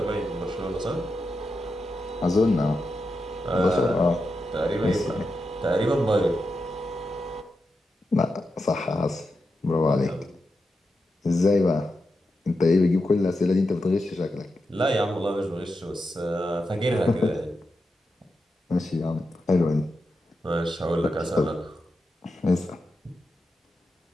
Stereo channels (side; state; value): both; normal; correlation 0.88